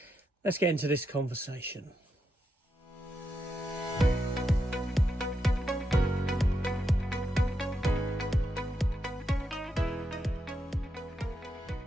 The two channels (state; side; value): normal; both; correlation 0.84